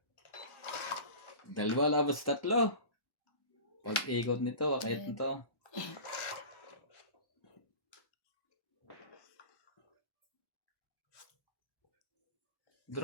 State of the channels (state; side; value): late; right; 1.1 ms